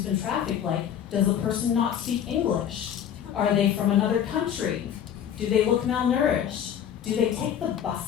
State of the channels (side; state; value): right; quieter; 9.2 dB